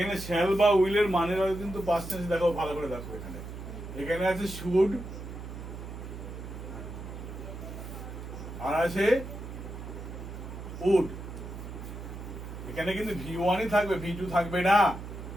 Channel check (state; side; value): noise; right; hum, 10 dB below the sound